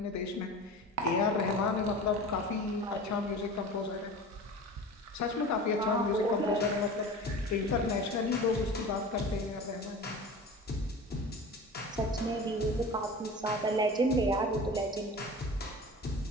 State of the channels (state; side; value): normal; both; correlation 0.35